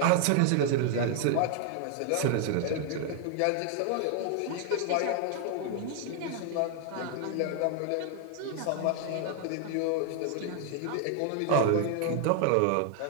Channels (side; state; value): both; different; correlation 0.00